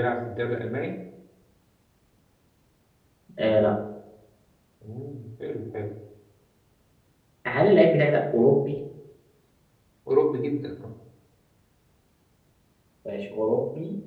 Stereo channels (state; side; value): identical; both; correlation 1.00